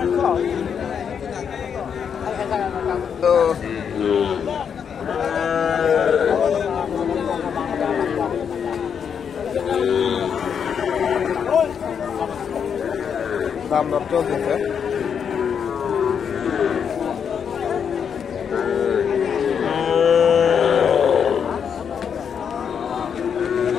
তো দাম দর চলতেছে।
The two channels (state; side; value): quieter; right; 7.3 dB